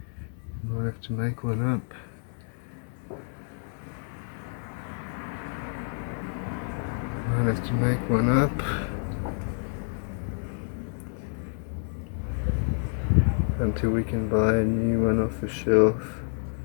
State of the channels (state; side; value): silent; right; 59 dB below the other